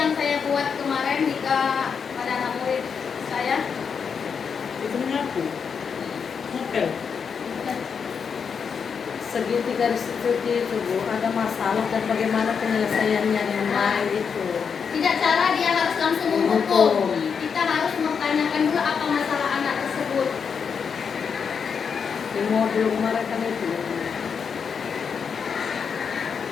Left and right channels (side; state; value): right; quieter; 6.4 dB